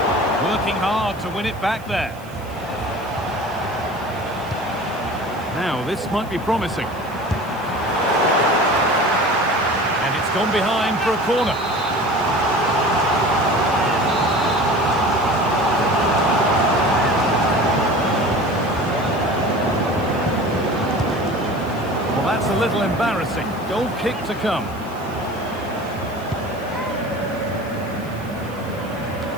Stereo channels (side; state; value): right; noise; hiss, 24 dB below the sound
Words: Working hard to win it back there. Now, this might be promising. And it's gone behind for a corner. Well, that's a little embarrassing. Goal kick to come.